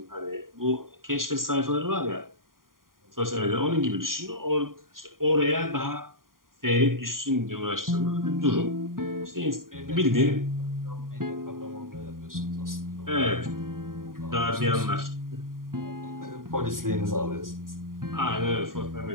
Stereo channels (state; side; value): late; left; 0.91 ms